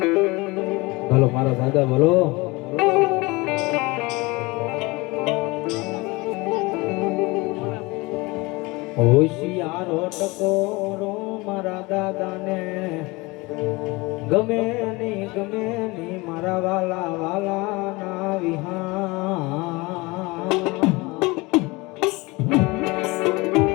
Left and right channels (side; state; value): right; quieter; 23.9 dB